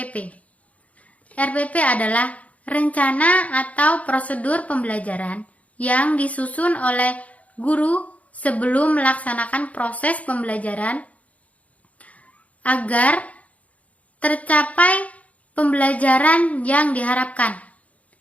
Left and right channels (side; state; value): right; late; 0.068 ms